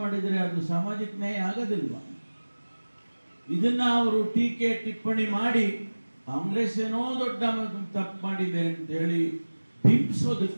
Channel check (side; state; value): both; inverted; correlation -1.00